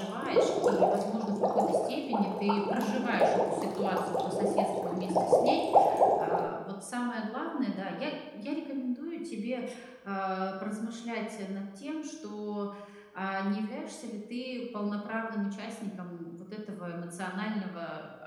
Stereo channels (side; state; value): both; identical; correlation 1.00